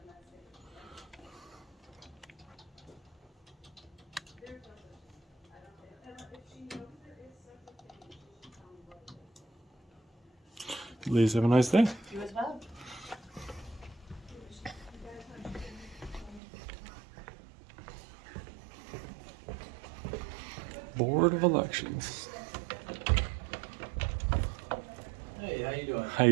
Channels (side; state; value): left; drops out; at 16.4 s